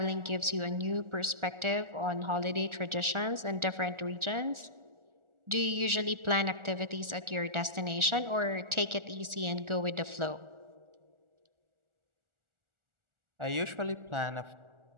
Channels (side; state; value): left; late; 1.4 ms